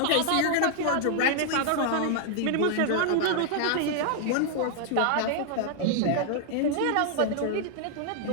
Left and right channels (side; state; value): both; different; correlation 0.00